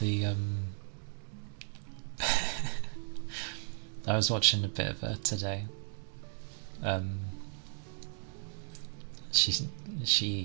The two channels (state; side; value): silent; left; 54 dB below the other